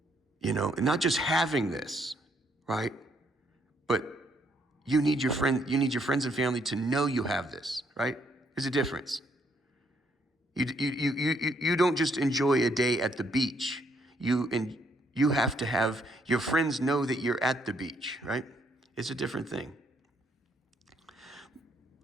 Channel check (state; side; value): normal; both; correlation 0.71